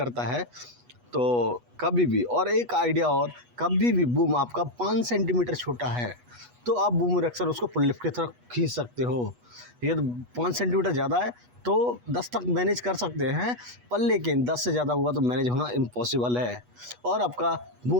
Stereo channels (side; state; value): left; late; 8.2 ms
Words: है। तो कभी भी, और एक आइडिया और, कभी भी बूम आपका 5 सेंटीमीटर छोटा है तो आप बूम इरेक्शन उसको पुल लिफ्ट की तरफ खींच सकते हो। ये 5 सेंटीमीटर ज़्यादा है तो 10 तक मैनेज कर सकते हैं, पर लेकिन 10 से ज़्यादा हुआ तो मैनेज होना इम्पॉसिबल है। और आपका